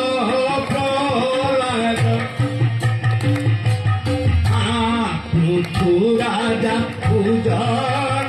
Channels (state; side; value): identical; both; correlation 1.00